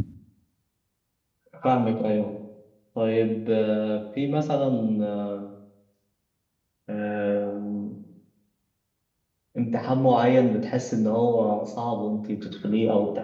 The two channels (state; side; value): identical; both; correlation 1.00